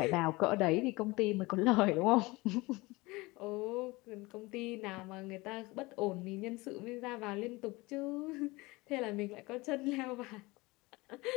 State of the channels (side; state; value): right; quieter; 22.7 dB